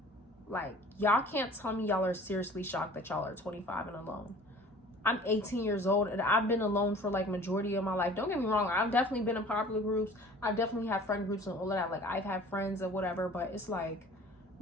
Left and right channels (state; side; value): normal; both; correlation 0.47